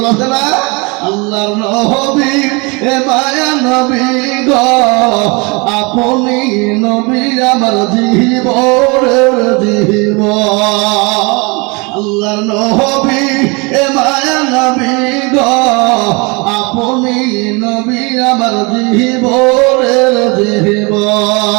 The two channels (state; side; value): quieter; left; 28.9 dB